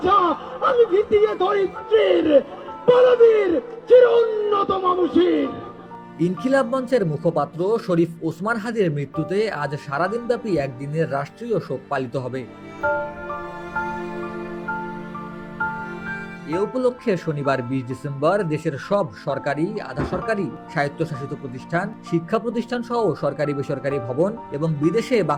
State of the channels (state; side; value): identical; both; correlation 1.00